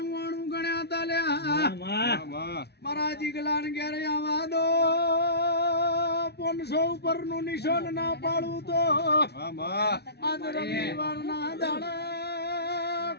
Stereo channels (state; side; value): late; right; 0.48 ms